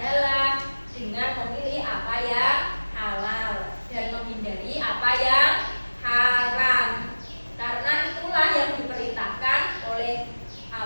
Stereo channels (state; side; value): inverted; both; correlation -1.00